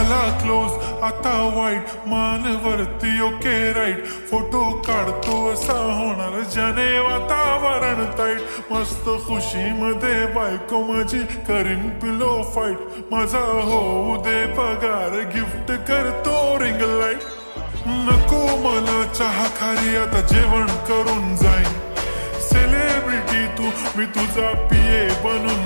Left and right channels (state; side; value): inverted; both; correlation -1.00